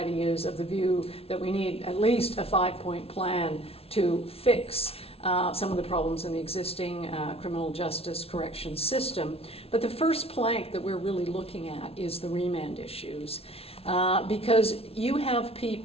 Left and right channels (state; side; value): late; right; 0.28 ms